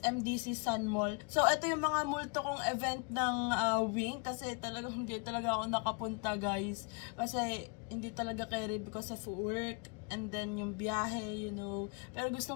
Sun Mall. So ito yung mga multo kong event ng Wink. Kasi hindi talaga ako nakapunta guys. Kasi hindi talaga carry because of work. And then yung biyahe, you know. Pero gusto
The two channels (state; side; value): quieter; right; 34.4 dB